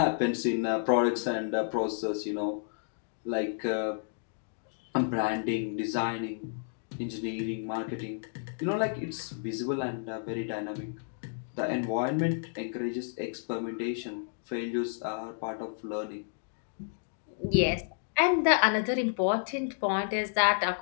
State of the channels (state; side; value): silent; right; digital silence